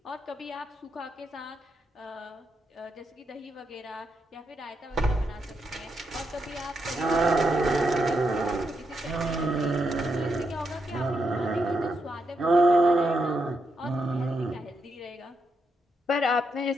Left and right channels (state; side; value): normal; both; correlation 0.82